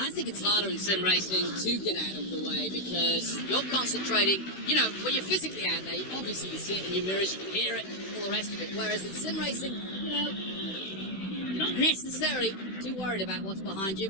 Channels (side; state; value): right; late; 16 ms